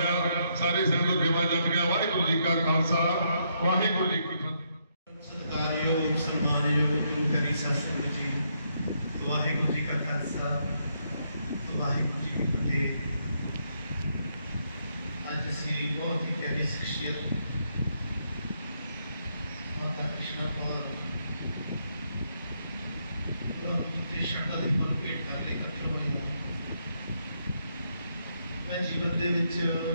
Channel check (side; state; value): both; inverted; correlation -0.76